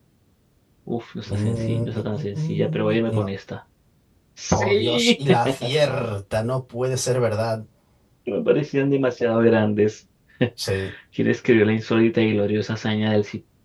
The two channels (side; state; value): both; identical; correlation 1.00